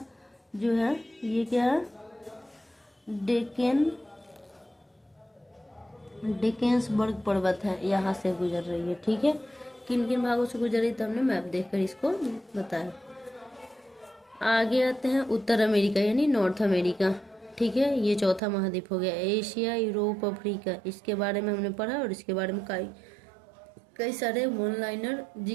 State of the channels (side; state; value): left; drops out; at 18.4 s